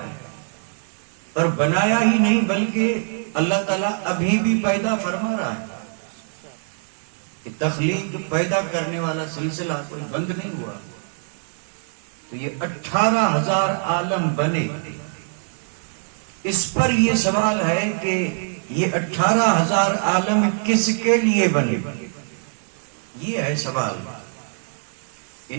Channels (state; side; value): silent; left; digital silence